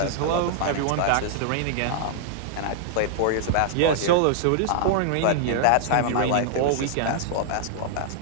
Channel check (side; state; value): both; different; correlation -0.01